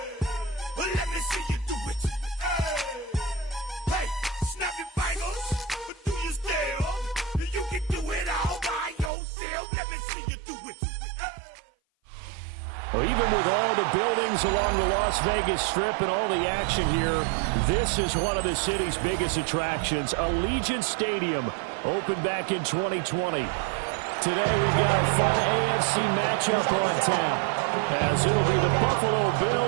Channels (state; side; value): drops out; left; at 9.1 s